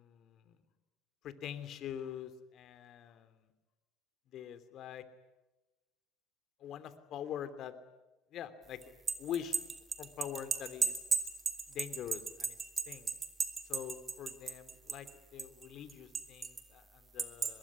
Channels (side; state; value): both; normal; correlation 0.73